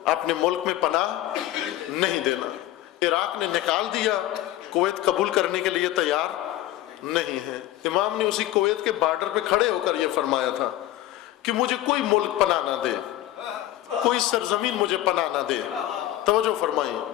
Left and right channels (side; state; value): right; quieter; 14.5 dB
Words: اپنے ملک میں پناہ نہیں دینا. عراق نے نکال دیا، کویت قبول کرنے کے لیے تیار نہیں ہے. امام نے اسی کویت کے بارڈر پہ کھڑے ہو کر یہ فرمایا تھا کہ مجھے کوئی ملک پناہ نہ دے، کوئی سرزمین مجھے پناہ نہ دے. توجہ فرمائیں،